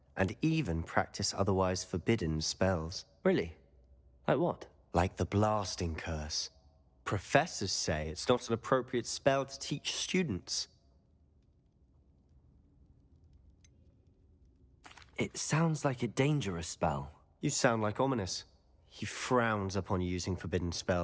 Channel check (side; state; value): both; identical; correlation 1.00